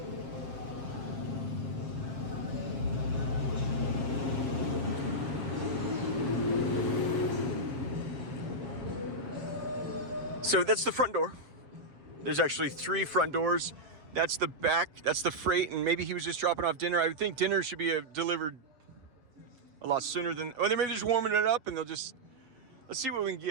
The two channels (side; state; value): left; late; 7.5 ms